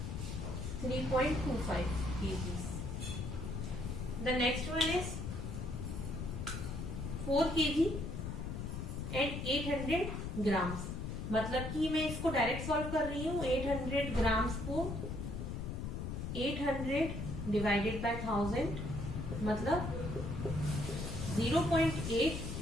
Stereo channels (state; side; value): noise; left; rumble, 4 dB below the sound